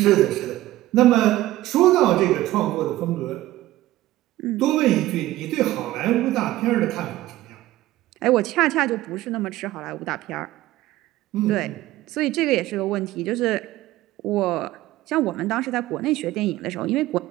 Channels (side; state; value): left; quieter; 16.1 dB